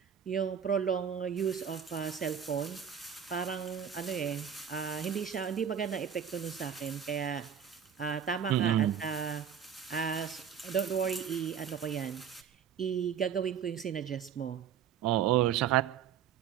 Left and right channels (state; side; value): quieter; left; 8.2 dB